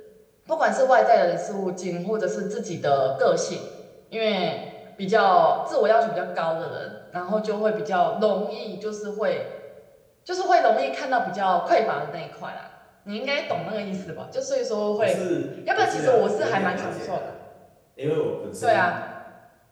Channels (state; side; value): identical; both; correlation 1.00